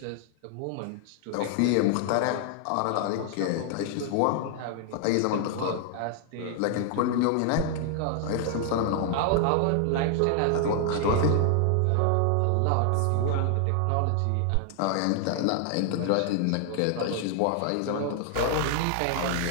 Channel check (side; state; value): both; different; correlation 0.00